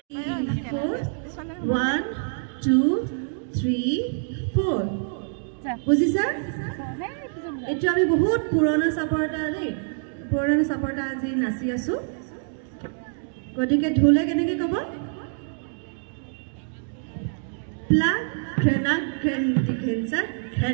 2 3 4 বুজিছা এটো আমি বহুত পুৰণা সাপৰটা দেই পুৰণা সাপৰটা আজি নাচি আছো গটিকে ঢোলে কেনেকে কব প্লা ঘেনা ঘেন্দি ঘেনসা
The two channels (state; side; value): silent; left; digital silence